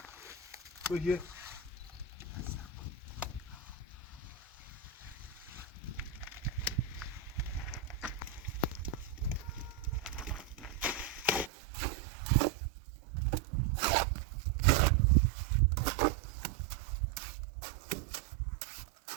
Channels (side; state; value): left; drops out; at 11.5 s